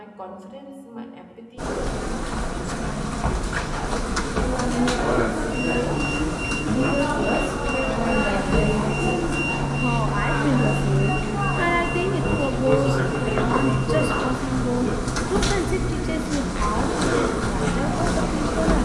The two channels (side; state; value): both; identical; correlation 1.00